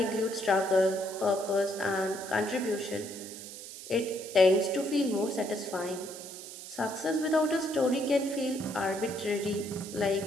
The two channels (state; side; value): noise; right; hiss, 12 dB below the sound